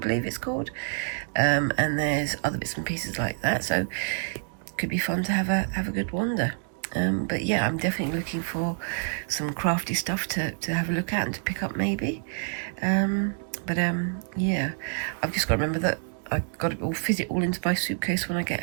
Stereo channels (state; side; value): silent; left; 60 dB below the other